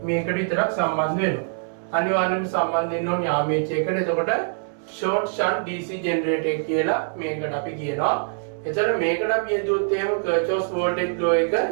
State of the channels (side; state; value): left; silent; 63 dB below the other